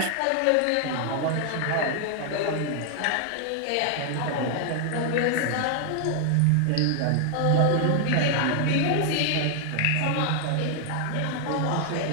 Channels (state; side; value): different; both; correlation 0.00